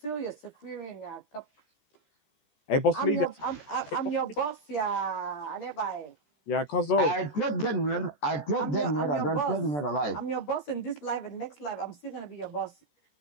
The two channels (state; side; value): late; right; 14 ms